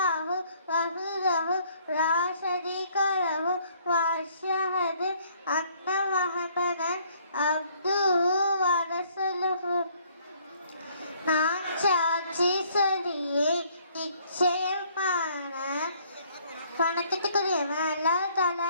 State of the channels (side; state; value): both; inverted; correlation -0.62